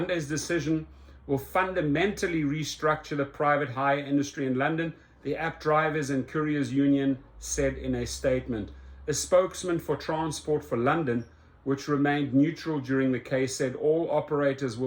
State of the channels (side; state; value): both; identical; correlation 1.00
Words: decision will fundamentally restructure the private hire industry in London, the App Drivers and Couriers Union said in a statement. A spokesman for Transport for London, which remained neutral during the case, said all operators